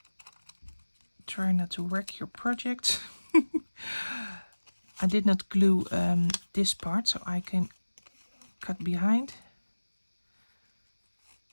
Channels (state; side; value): inverted; both; correlation -1.00